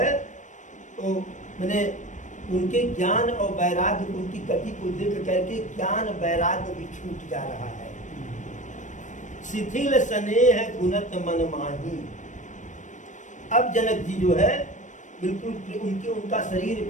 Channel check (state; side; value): late; right; 0.36 ms